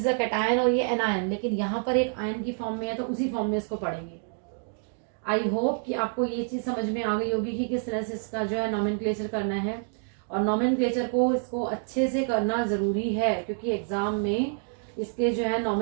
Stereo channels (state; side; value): silent; left; 60 dB below the other